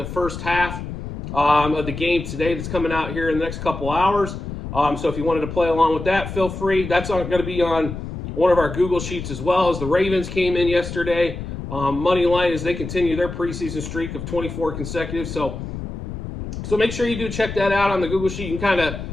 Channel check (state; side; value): noise; left; rumble, 8 dB below the sound